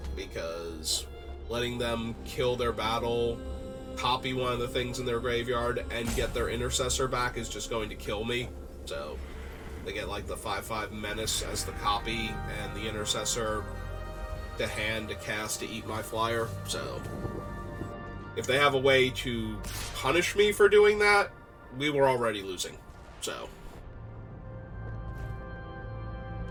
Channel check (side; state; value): both; identical; correlation 1.00